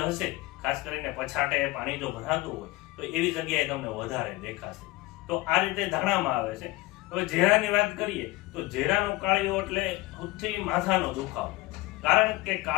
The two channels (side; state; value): right; quieter; 20.1 dB